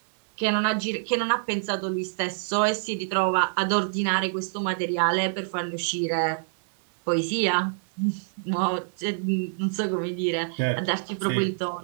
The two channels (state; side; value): silent; left; 61 dB below the other